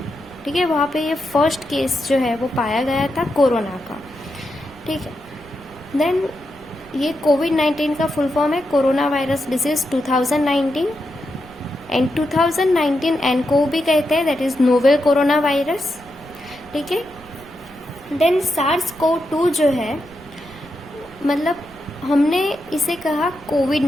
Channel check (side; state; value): right; noise; rumble, 22 dB below the sound